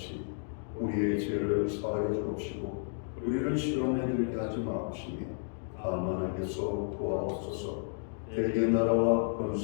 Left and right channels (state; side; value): silent; right; digital silence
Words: 우리의 죄를 사하여 주옵시고 우리를 시험에 들게 하지 마옵시며 다만 악에서 구하옵소서. 대개 나라와